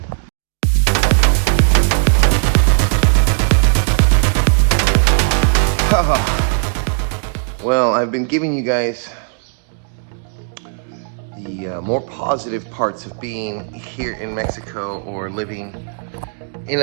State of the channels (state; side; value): silent; left; digital silence